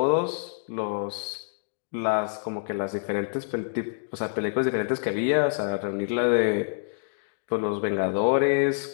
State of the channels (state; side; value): silent; right; digital silence